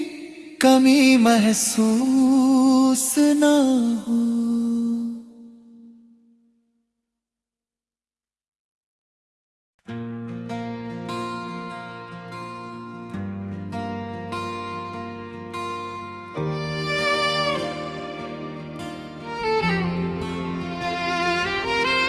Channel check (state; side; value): identical; both; correlation 1.00